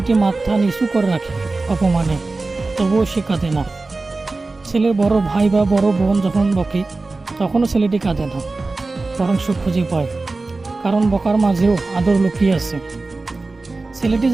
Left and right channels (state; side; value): quieter; left; 3.5 dB